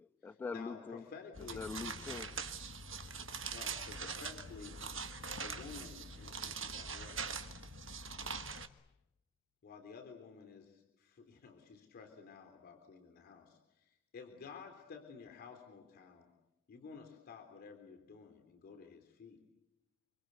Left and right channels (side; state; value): both; normal; correlation 0.21